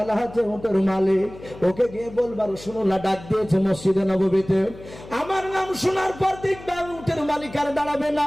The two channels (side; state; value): left; noise; hum, 17 dB below the sound